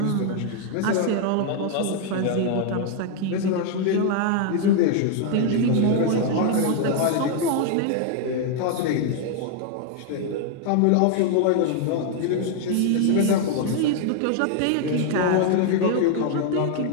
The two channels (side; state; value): both; different; correlation 0.00